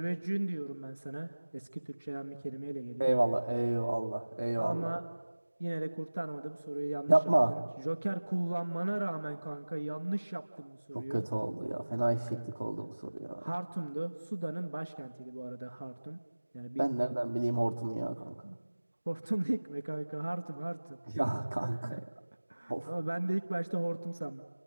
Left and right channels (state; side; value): inverted; both; correlation -1.00